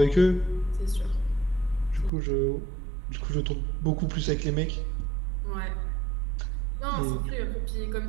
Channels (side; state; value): left; drops out; at 2.1 s